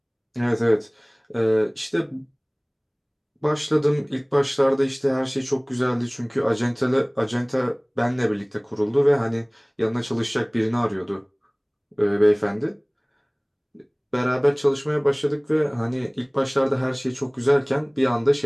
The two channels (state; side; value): identical; both; correlation 1.00